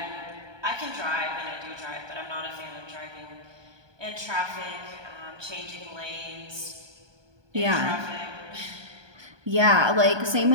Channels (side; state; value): left; late; 1.2 ms